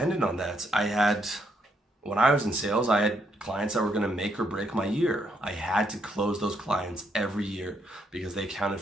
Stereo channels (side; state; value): both; normal; correlation 0.75